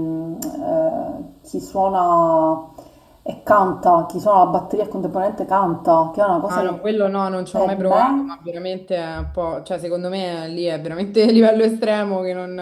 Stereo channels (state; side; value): identical; both; correlation 1.00